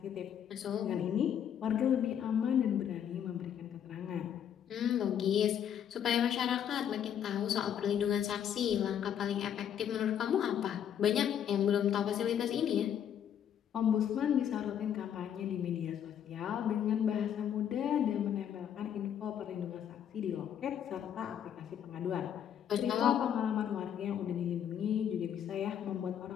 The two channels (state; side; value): quieter; right; 9.3 dB